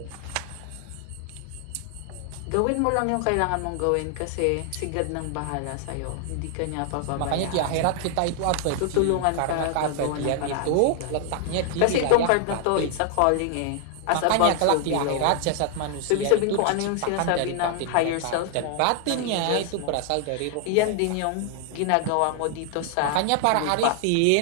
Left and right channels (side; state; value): both; different; correlation 0.00